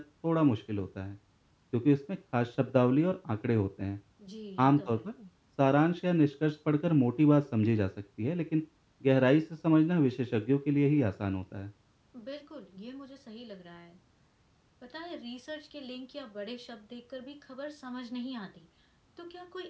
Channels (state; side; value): identical; both; correlation 1.00